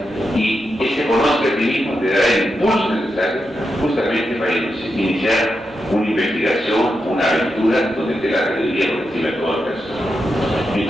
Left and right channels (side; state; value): both; normal; correlation 0.86